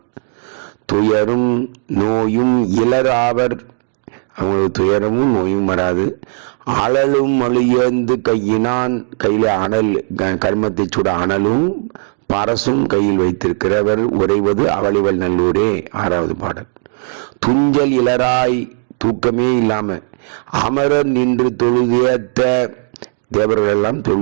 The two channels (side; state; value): left; silent; digital silence